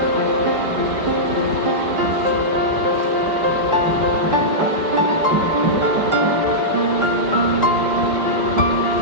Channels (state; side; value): late; left; 5.2 ms